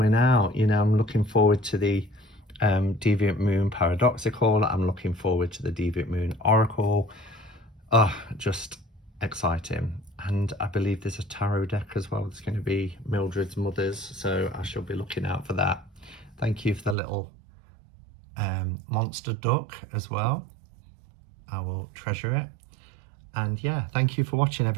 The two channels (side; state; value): left; drops out; at 16.9 s